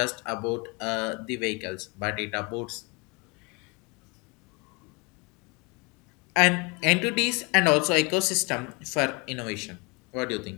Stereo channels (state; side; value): quieter; right; 29.7 dB